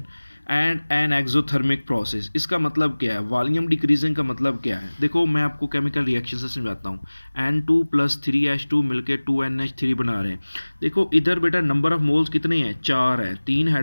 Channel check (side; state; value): both; inverted; correlation -1.00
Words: and an exothermic process. इसका मतलब क्या है? वॉल्यूम डिक्रीजिंग का मतलब क्या है? देखो मैं आपको केमिकल रिएक्शन से समझाता हूँ। N2 + 3H2 मिलकर 2NH3 बना रहे हैं। देखो इधर बेटा नंबर ऑफ मोल्स कितने हैं? 4 है, 3